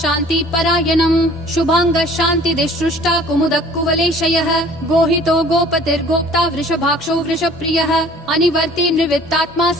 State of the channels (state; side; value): normal; both; correlation 0.51